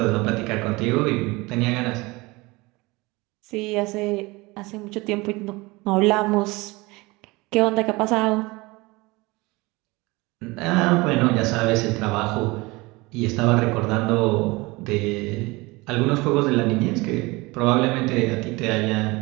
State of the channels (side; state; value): left; quieter; 23.3 dB